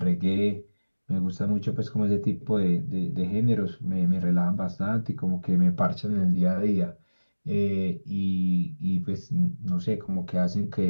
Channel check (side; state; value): both; inverted; correlation -1.00